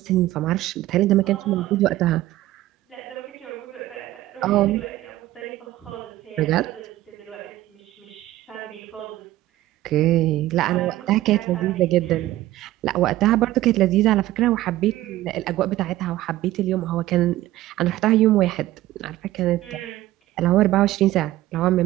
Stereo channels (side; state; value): left; quieter; 15.6 dB